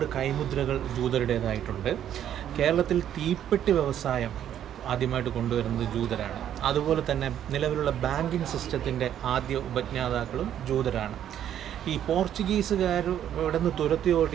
കൈമുദ്രകൾ ജൂതരുടേതായിട്ടുണ്ട്. കേരളത്തിൽ തീപ്പെട്ടി വ്യവസായം ആദ്യമായിട്ട് കൊണ്ടുവരുന്നത് ജൂതരാണ്. അതുപോലെ തന്നെ നിലവിലുള്ള ബാങ്കിങ് സിസ്റ്റത്തിൻ്റെ ആദ്യ ഉപജ്ഞാതാക്കളും ജൂതരാണ്. ഈ പോർച്ചുഗീസുകാർ ഇവിടെ നിന്ന് തുരത്തി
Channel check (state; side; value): quieter; left; 10.4 dB